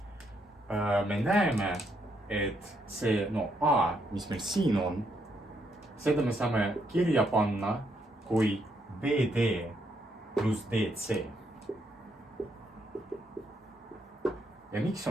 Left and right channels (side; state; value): both; normal; correlation 0.75